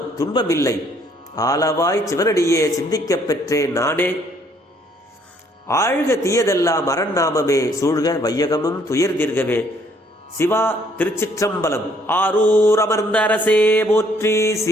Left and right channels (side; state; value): both; normal; correlation 0.65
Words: துன்பமில்லை, ஆளவாய் சிவனடியே சிந்திக்கப் பெற்றேன் நானே. ஆழ்க தீயதெல்லாம் அரண்நாமமே சூழ்க, வையகமும் துயர் தீர்கவே. சிவா திருச்சிற்றம்பலம். ஆரூர் அமர்ந்த அரசே போற்றி,